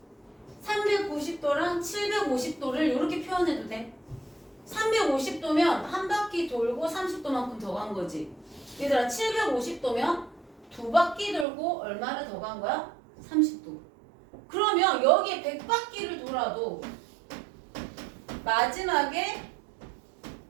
390도랑 750도를 이렇게 표현해도 돼. 350도면 한 바퀴 돌고 30도만큼 더 간 거지. 얘들아, 750도면 두 바퀴 돌고 얼마를 더 간 거야? 30도. 그러면 여기에 100바퀴를 돌아도 마지막에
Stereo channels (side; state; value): left; drops out; at 11.5 s